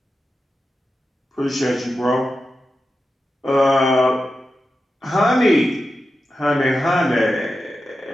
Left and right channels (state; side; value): normal; both; correlation 0.91